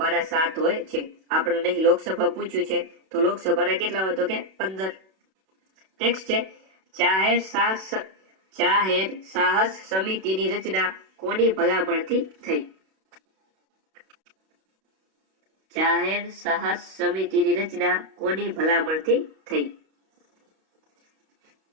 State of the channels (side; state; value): left; late; 32 ms